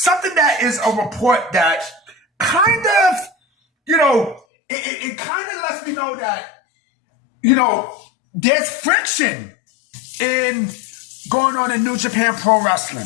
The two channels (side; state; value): right; drops out; at 4.4 s